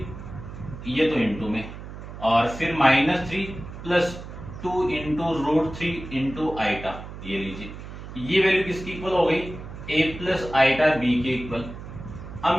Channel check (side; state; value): right; noise; hum, 12 dB below the sound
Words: ये तो इंटू में, और फिर -3 प्लस 2 इंटू √3 इंटू आइटा। ये लीजिए, ये वैल्यू किसकी इक्वल हो गई? a प्लस आइटा b के इक्वल। अब